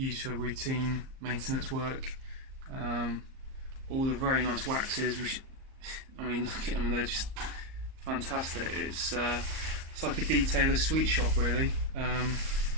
for routine maintenance work. All the very nice waxes. I mean, look at them; they're just fantastic. It's it's like a detailer sweet shop really. And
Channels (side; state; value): left; late; 38 ms